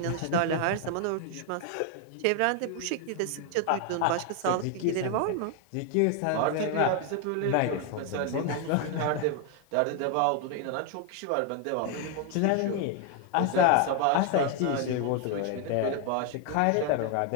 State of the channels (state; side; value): different; both; correlation 0.01